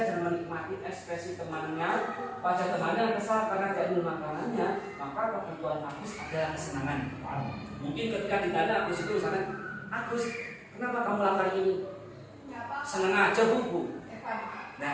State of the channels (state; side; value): identical; both; correlation 1.00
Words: dan menikmati ekspresi temannya, wajah temannya yang kesal karena dia belum makanannya, maka kebutuhan Agus adalah kesenangan. Mungkin ketika ditanya Agus itu misalnya, Agus, kenapa kamu lakukan ini? Senang aja Bu. Nah,